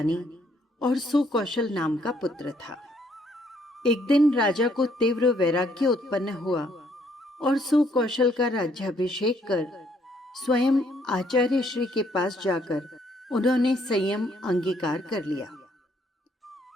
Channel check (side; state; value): both; normal; correlation 0.68